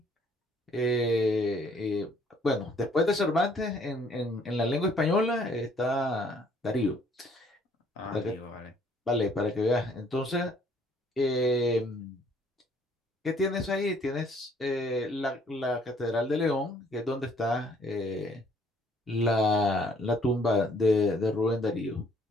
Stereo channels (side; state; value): both; normal; correlation 0.62